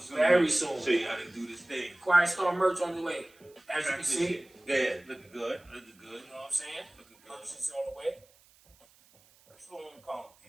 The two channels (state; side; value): noise; right; hiss, 29 dB below the sound